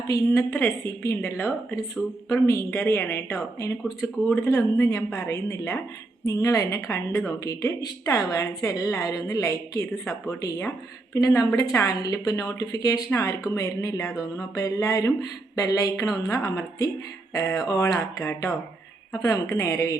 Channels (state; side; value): quieter; left; 3.1 dB